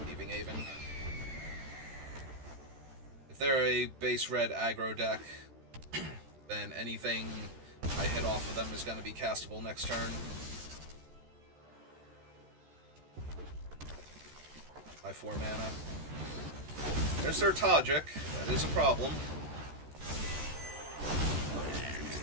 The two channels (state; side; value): late; left; 13 ms